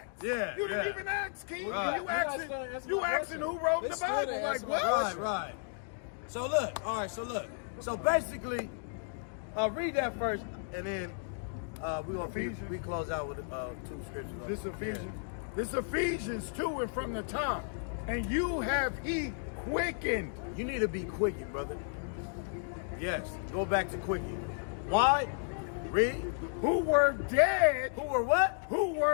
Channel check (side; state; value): right; silent; digital silence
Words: Yeah, You didn't yeah. even ask, King. Right. You asking who wrote the Bible? Like what? Right. So look, all right. So basically, read that first, and then we close out with 2 scriptures. This Ephesians. This Ephesians 2 and from the top. And you have he quickened. You need to be quickened, brother. Yes. Go back to quickened. Why? Read. Who were dead. Who were what? Who